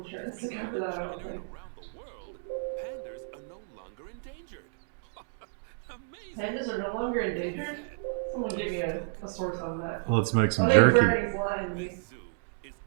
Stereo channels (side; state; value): left; silent; digital silence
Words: to cover that, I don't think. Around the world, pandas are no longer endangered. Amazing. Pandas are no longer endangered? Someone give me a source on that. Let's make some I think jerky. Bernie's lying to me.